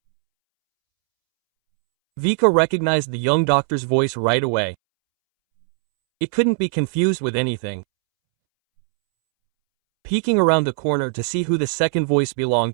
Vika recognized the young doctor's voice right away. It couldn't be confused with anything. Peeking around the corner to see who the second voice belonged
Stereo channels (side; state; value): left; silent; 66 dB below the other